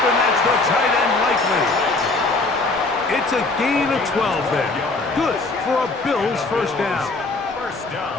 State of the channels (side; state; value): right; quieter; 3.4 dB